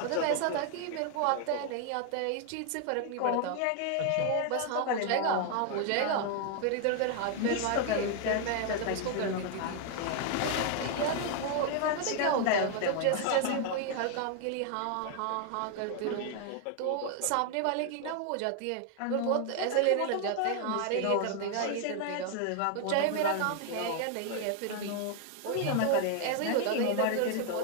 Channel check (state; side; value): different; both; correlation 0.00